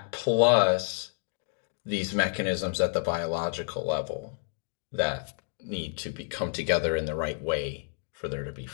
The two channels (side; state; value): right; silent; digital silence